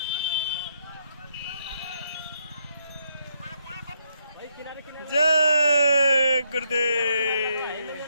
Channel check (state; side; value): inverted; both; correlation -0.76